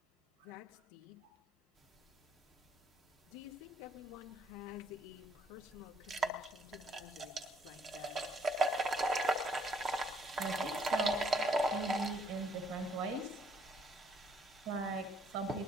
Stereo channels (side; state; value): both; normal; correlation 0.65